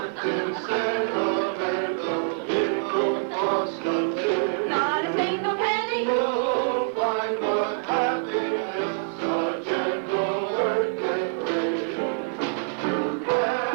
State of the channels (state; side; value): silent; left; 61 dB below the other